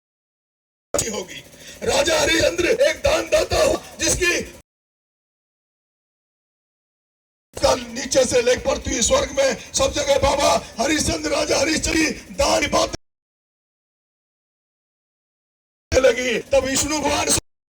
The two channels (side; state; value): both; identical; correlation 1.00